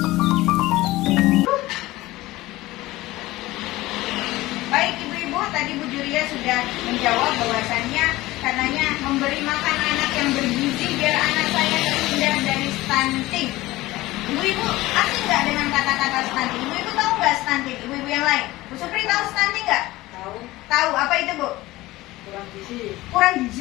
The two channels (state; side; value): quieter; right; 18.3 dB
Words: Baik ibu-ibu, tadi Bu Julia sudah menjawab bahwasannya karenanya memberi makan anak yang bergizi biar anak saya terhindar dari stunting. Ibu-ibu asing nggak dengan kata-kata stunting? Ibu-ibu tahu nggak stunting? Ibu-ibu yang lain, Bu Supri tahu stunting nggak? Tahu. Tahu. Apa itu Bu? Kurang gizi. Kurang